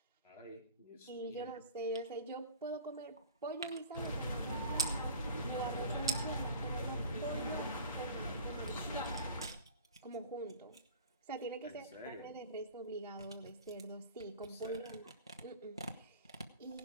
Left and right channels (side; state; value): both; inverted; correlation -0.39